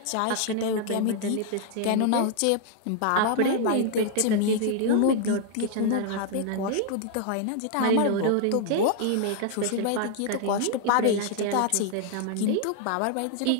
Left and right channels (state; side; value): different; both; correlation 0.00